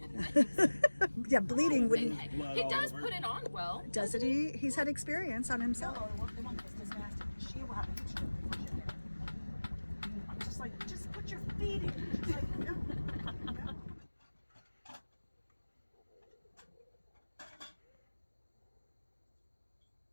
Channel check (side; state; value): both; inverted; correlation -1.00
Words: Yeah, bleeding wouldn't. He does put it on well. Doesn't he? He's had experience on himself. I'm just like, just put your feet in. Just like, no.